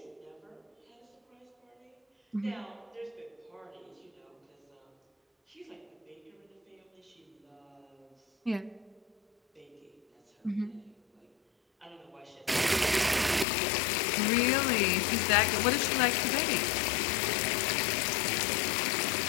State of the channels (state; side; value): drops out; right; at 13.5 s